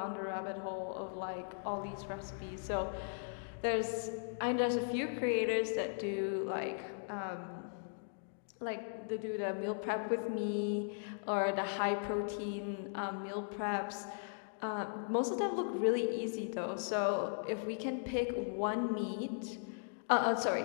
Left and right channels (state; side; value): silent; right; digital silence